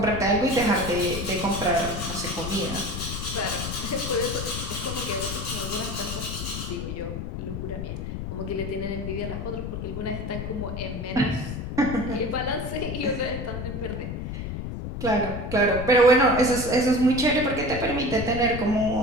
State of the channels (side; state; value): left; noise; rumble, 6 dB below the sound